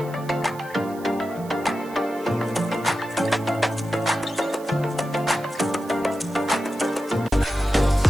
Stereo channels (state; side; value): noise; right; hiss, 21 dB below the sound